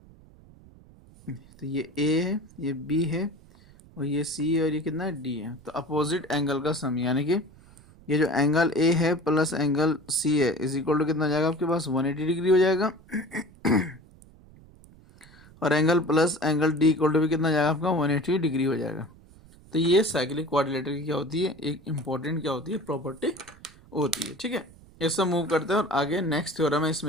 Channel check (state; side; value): noise; right; rumble, 24 dB below the sound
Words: तो ये A है, ये B है, और ये C है, और ये कितना है, D है। तो अपोजिट एंगल का सम, यानी कि ये जो एंगल A है प्लस एंगल C है इज इक्वल टू कितना हो जाएगा आपके पास, 180 डिग्री हो जाएगा। और angle plus angle D equal to भी कितना हो जाएगा आपका, 180 डिग्री हो जाएगा। तो ये साइक्लिक कोऑर्डिनेटर की क्या होती है, एक इंपॉर्टेंट क्या होती है, प्रॉपर्टी होती है। ठीक है। इससे मूव करते हैं और आगे नेक्स्ट थ्योरम है